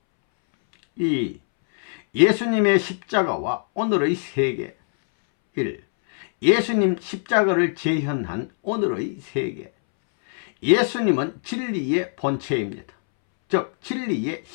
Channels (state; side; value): silent; right; 64 dB below the other